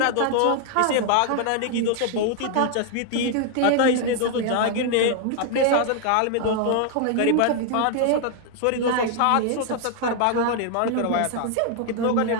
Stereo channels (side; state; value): both; different; correlation 0.00